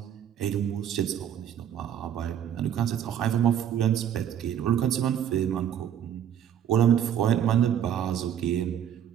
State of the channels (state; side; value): quieter; left; 9.6 dB